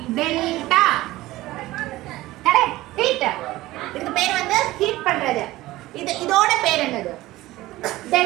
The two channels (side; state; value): left; quieter; 17.5 dB